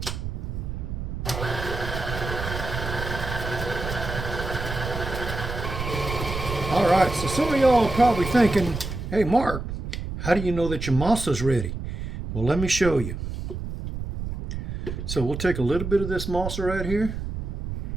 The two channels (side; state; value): right; noise; rumble, 6 dB below the sound